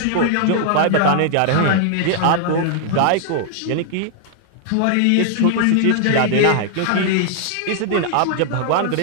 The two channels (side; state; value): both; different; correlation 0.00